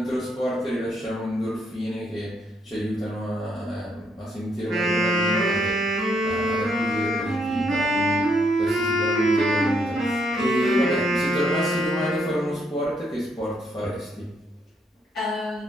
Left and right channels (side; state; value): both; normal; correlation 0.74